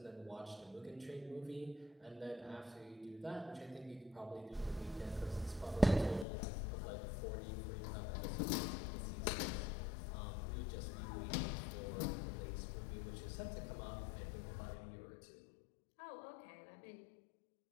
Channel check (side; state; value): right; drops out; at 6.2 s